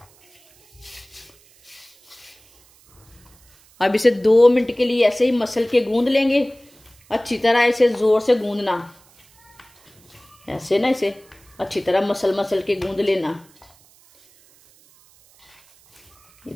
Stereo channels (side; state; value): right; noise; hiss, 29 dB below the sound